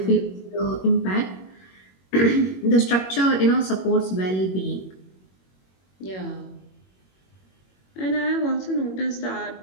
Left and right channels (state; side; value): late; right; 21 ms